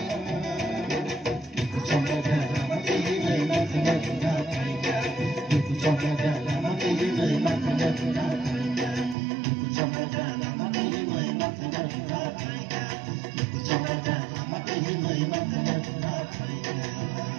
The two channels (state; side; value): drops out; left; at 9.2 s